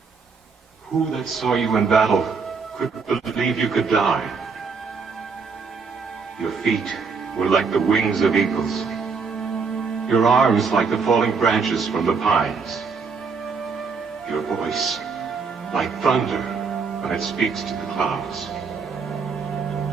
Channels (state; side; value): quieter; left; 5.2 dB